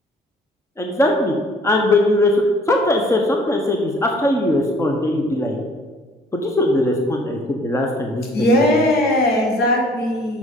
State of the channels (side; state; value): both; normal; correlation 0.56